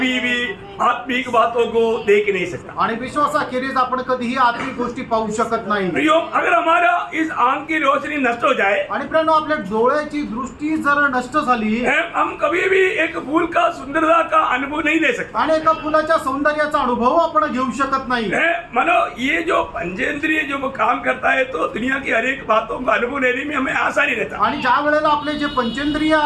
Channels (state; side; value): identical; both; correlation 1.00